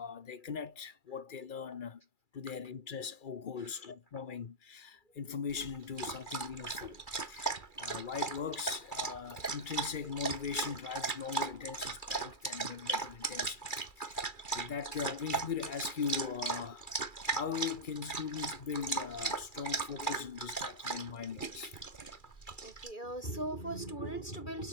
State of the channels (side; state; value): right; late; 2.3 ms